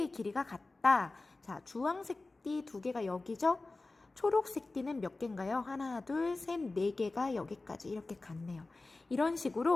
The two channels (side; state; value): right; quieter; 3.3 dB